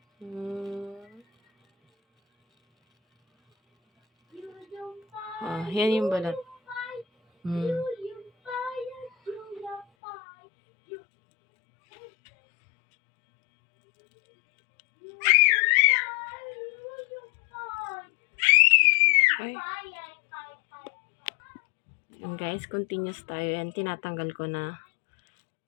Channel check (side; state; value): right; drops out; at 9.9 s